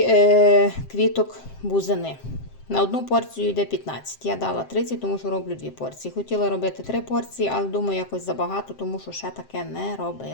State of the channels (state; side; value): late; right; 7.6 ms